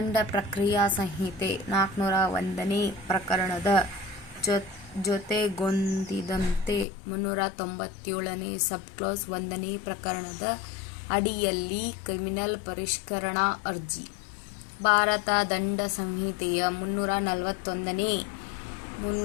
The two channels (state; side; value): drops out; right; at 6.9 s